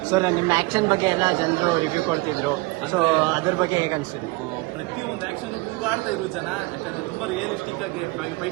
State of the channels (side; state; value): left; quieter; 24.1 dB